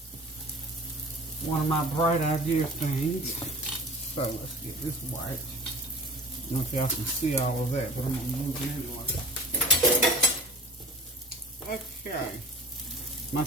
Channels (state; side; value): normal; both; correlation 0.39